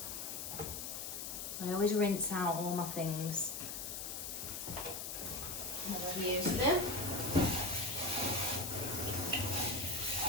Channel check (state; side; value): noise; left; hiss, 5 dB below the sound